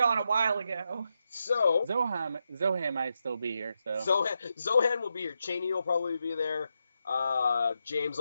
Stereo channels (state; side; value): inverted; both; correlation -0.85